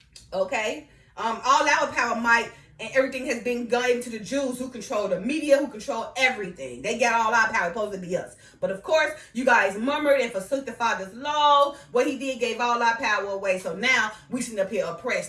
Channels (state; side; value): identical; both; correlation 1.00